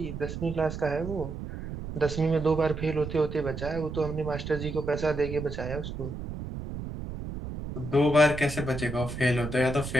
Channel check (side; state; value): right; noise; rumble, 8 dB below the sound